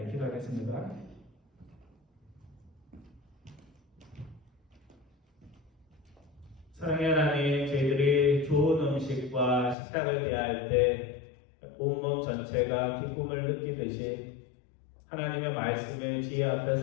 기도하겠습니다. 사랑의 하나님, 저희들이 좋은 음식과 식탁을 대할 때 온몸 전체가 기쁨을 느끼듯이 하나님의 말씀의 지혜 앞에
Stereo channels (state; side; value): drops out; right; at 9.8 s